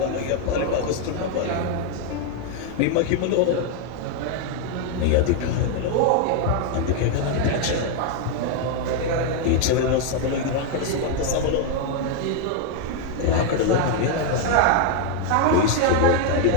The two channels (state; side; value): different; both; correlation 0.01